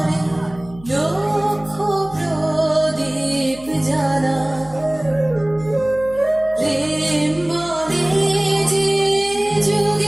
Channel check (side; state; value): left; noise; hum, 20 dB below the sound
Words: লক্ষ প্রদীপ জ্বালা, প্রেম বলে যে